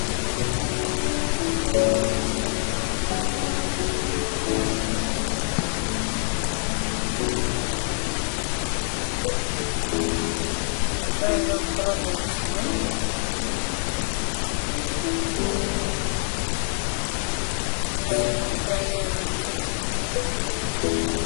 крафтинг тейбъл. Да направим една брадва за сега. Направим една кюрка.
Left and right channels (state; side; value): silent; right; 61 dB below the other